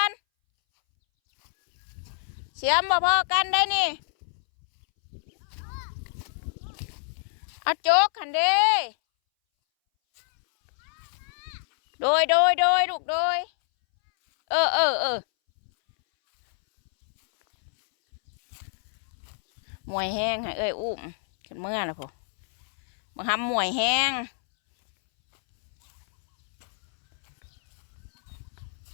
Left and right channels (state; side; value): silent; right; 61 dB below the other